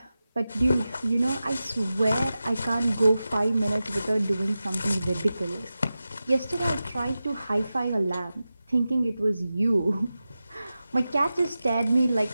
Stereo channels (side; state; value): both; inverted; correlation -0.94